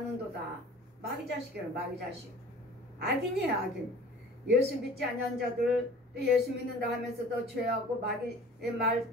마귀 자식이에요. 마귀 자식. 악인이에요. 악인. 예수 믿지 않는 자들, 또 예수 믿는다 하면서도 죄하고 마귀의 말,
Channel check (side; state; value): both; normal; correlation 0.45